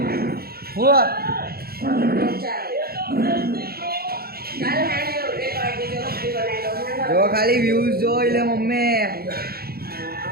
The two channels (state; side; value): late; left; 0.44 ms